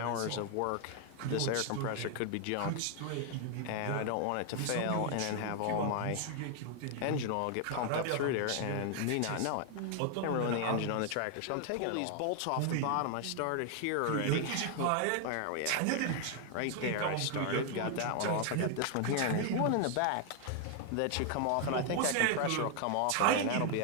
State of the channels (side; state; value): both; different; correlation 0.00